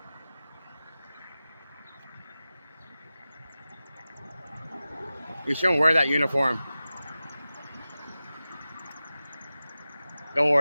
You shouldn't wear that uniform. Don't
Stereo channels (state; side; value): inverted; both; correlation -0.95